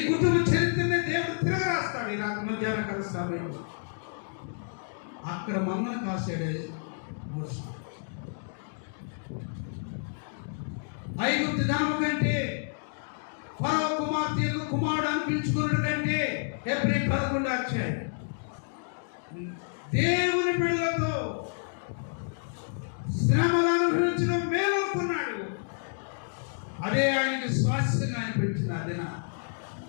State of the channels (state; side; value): silent; right; digital silence